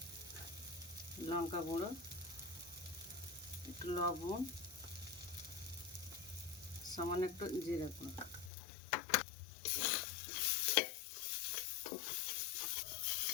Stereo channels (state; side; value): drops out; right; at 8.5 s